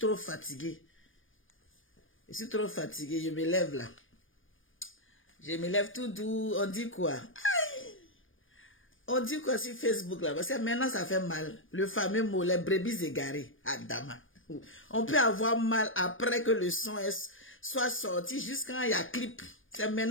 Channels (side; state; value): right; late; 0.58 ms